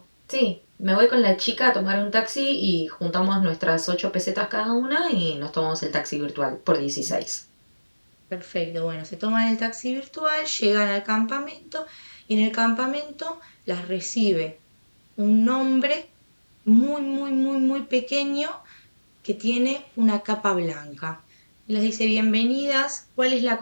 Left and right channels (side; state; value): both; inverted; correlation -1.00